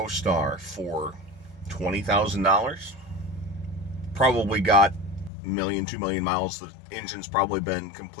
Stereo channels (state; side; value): drops out; right; at 5.3 s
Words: for $20,000. Probably got a million, 2 million miles. The engine's probably been